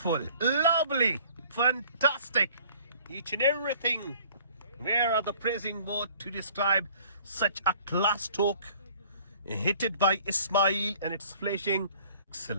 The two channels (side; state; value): both; inverted; correlation -0.53